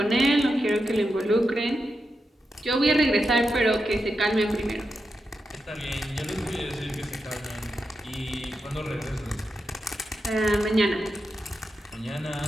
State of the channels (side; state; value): both; normal; correlation 0.87